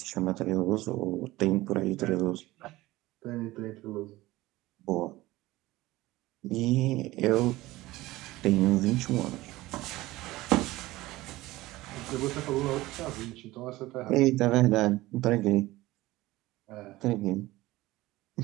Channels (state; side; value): quieter; left; 18.4 dB